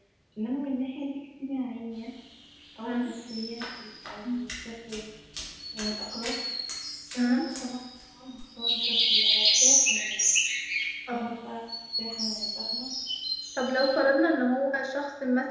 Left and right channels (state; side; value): identical; both; correlation 1.00